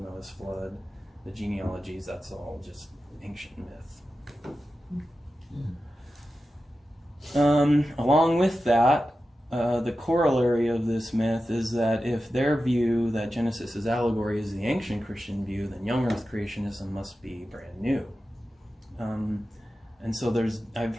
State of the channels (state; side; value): normal; both; correlation 0.93